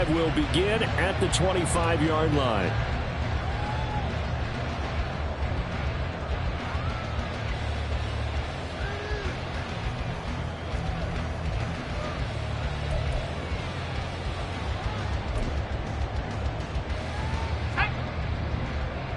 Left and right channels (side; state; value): both; identical; correlation 1.00